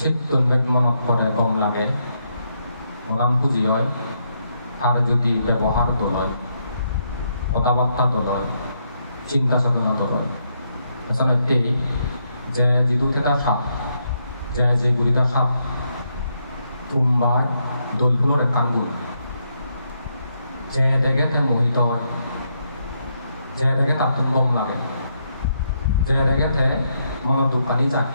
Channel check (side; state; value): both; inverted; correlation -0.78